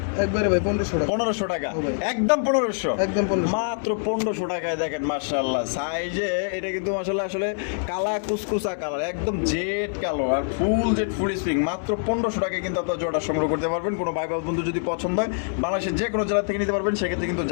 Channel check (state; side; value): silent; right; 62 dB below the other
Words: একবারে ভাই 1500 টাকা। 1500 টাকা, হবে। একদম 1500, একদম 1500। মাত্র 1500 টাকায়। দেখেন মাশাআল্লাহ, সাইজে এটা কিন্তু মাশাআল্লাহ আসলে কালা কুসকুসা কালার, একদম জেড কালো, আর ফুল জেড ফুল স্প্রিং। মাত্র 1500 টাকায় কিন্তু আপনার জোড়া সংগ্রহ করতে পারবেন। কোনো ভাই বন্ধু যদি পছন্দ হয়, বাংলাদেশের যে কোনো জেলা থেকে নিতে পারবেন। সেক্ষেত্রে কিন্তু